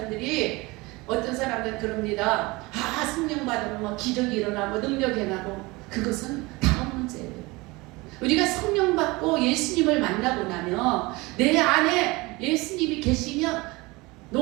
어떤 사람들은 그럽니다. 아, 성령 받으면 뭐 기적이 일어나고 능력이 일어나고 그것은 다음 문제예요. 우리가 성령 받고 예수님을 만나고 나면 내 안에 예수님이 계시면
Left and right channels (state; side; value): quieter; left; 23.2 dB